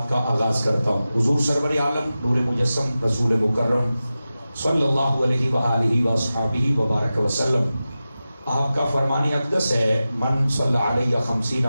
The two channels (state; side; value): inverted; both; correlation -0.94